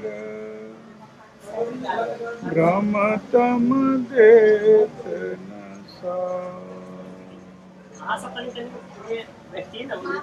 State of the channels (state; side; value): identical; both; correlation 1.00